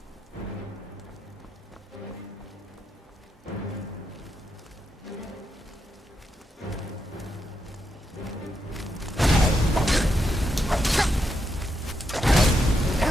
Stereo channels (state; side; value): normal; both; correlation 0.82